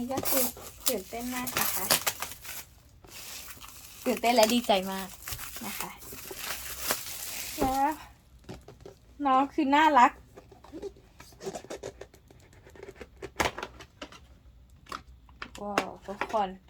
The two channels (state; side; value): identical; both; correlation 1.00